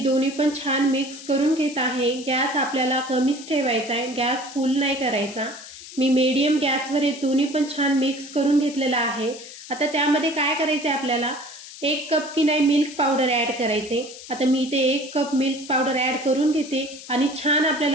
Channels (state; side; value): noise; left; hiss, 15 dB below the sound